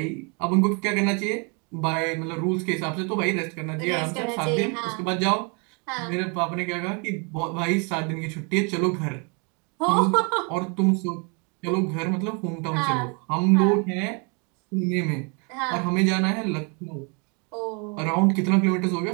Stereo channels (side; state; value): left; quieter; 34.4 dB